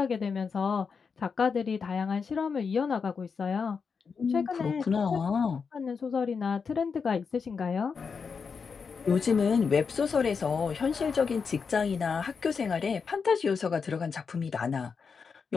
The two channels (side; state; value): right; quieter; 5.6 dB